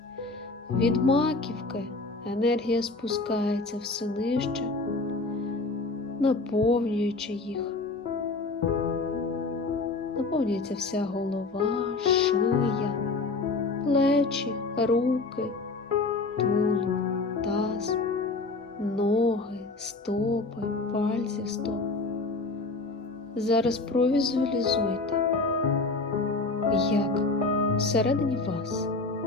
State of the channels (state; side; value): quieter; right; 3.6 dB